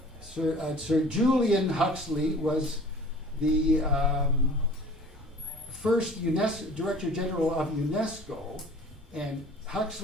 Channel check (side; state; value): both; normal; correlation 0.45